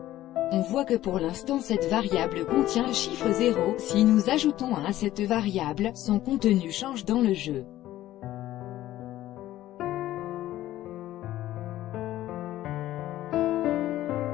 On voit que pour l'instant cette variable contient le chiffre 0, si nous ajoutons 1 à cette variable, son contenu change dans le jeu.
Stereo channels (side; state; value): right; quieter; 14.3 dB